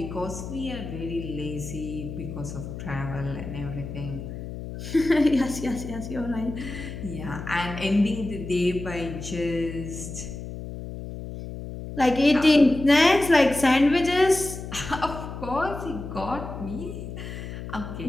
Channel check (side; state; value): left; noise; hum, 9 dB below the sound